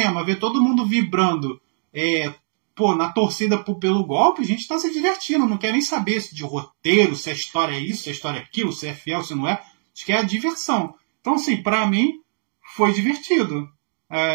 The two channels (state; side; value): silent; left; digital silence